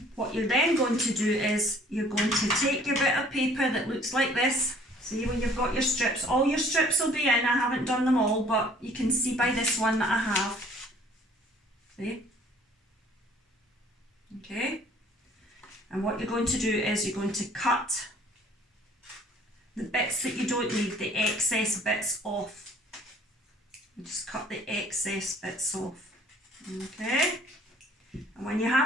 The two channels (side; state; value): both; normal; correlation 0.55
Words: what you're then going to do is you're going to take your bit of paper that looks like this. See, when you've got your strips, all your strips will be in. I haven't done them all, but you can see by this one that I have. See? Okay. And what you're going to do is you're going to cut the bits that you don't need, the excess bits off. You just cut the excess bits off. Okay. And when you